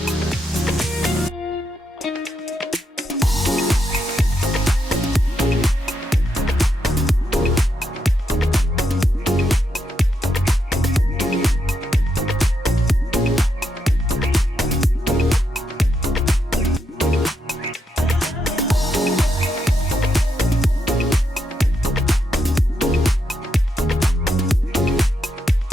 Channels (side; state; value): both; normal; correlation 0.81